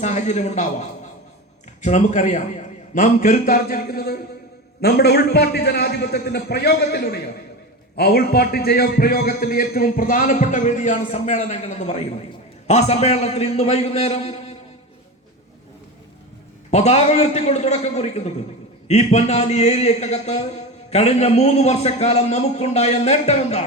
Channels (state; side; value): normal; both; correlation 0.24